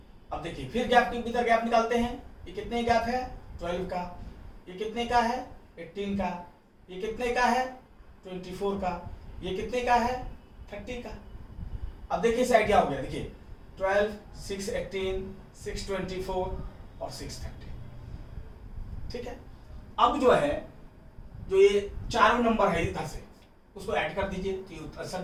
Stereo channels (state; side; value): identical; both; correlation 1.00